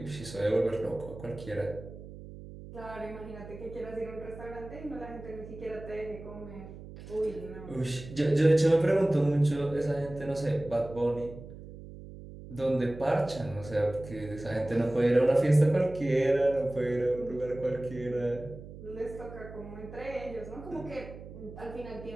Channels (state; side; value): noise; right; hum, 14 dB below the sound